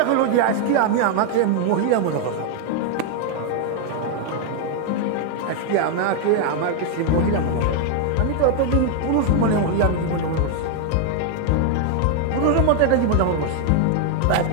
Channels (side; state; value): both; different; correlation 0.00